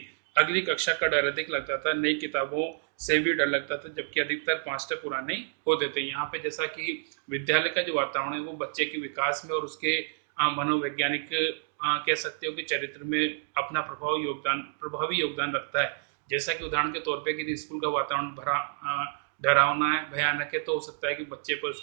अगली कक्षा का डर अधिक लगता था। नई किताबों से भी डर लगता था, जबकि अधिकतर मास्टर पुराने होते थे। यहाँ पे जैसा कि विद्यालय का जो वातावरण है वो बच्चे के विकास में और उसके मनोवैज्ञानिक कह सकते हो कि चरित्र में अपना प्रभावी योगदान रखता है। जैसा कि उदाहरण के तौर पे कि स्कूल का वातावरण भरा डरावना है, भयानक है, तो हो सकता है कि बच्चे पर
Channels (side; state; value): left; silent; digital silence